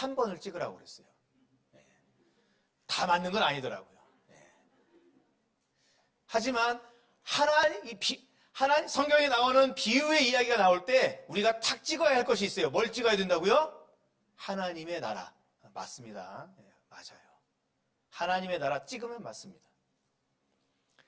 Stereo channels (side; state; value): both; identical; correlation 1.00